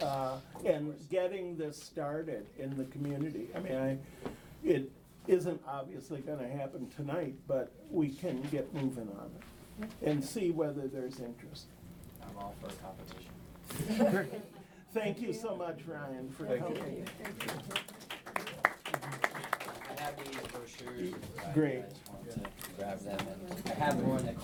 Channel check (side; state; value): both; identical; correlation 1.00